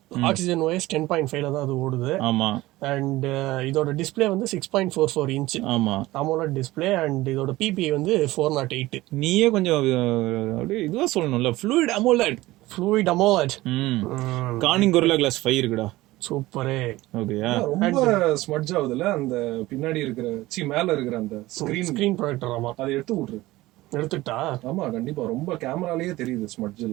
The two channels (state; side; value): quieter; left; 18.2 dB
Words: ஆக்சிஜன் OS 10.5ல தான் அது ஓடுது. ஆமா, அண்ட் இதோட டிஸ்பிளே வந்து 6.44 இன்ச். ஆமா, AMOLED டிஸ்பிளே. அண்ட் இதோட PPI வந்து 408. நீயே கொஞ்சம் அப்படியே இதுவா சொல்லணும்ல, fluid AMOLED. Corning Gorilla Glass 5 இருக்குடா. சூப்பரே. ஓகேயா, ரொம்ப ஸ்மட்ஜ் ஆகுதுல அந்த பின்னாடி இருக்கிற மேல இருக்கிற அந்த ஸ்கிரீன் ப்ரொஜெக்டர். ஆமா, அதை எடுத்துட்டா. ஆமா, கண்டிப்பா ரொம்ப கேமராலயே தெரியுது ஸ்மட்ஜ்